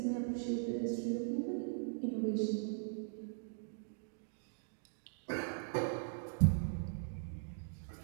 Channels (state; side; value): silent; left; digital silence